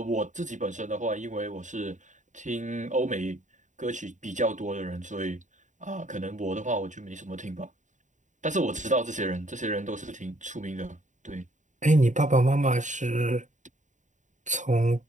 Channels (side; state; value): left; late; 0.36 ms